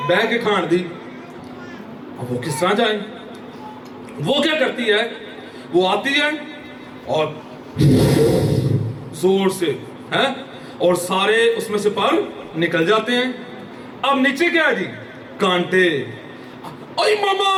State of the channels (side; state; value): both; identical; correlation 1.00